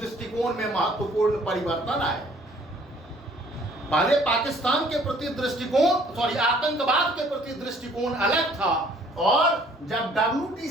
में महत्वपूर्ण परिवर्तन आए। पहले पाकिस्तान के प्रति दृष्टिकोण, आतंकवाद के प्रति दृष्टिकोण अलग था, और जब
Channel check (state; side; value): normal; both; correlation 0.58